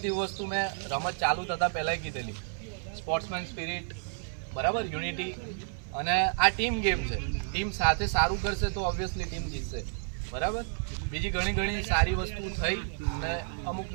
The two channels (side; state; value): left; silent; 57 dB below the other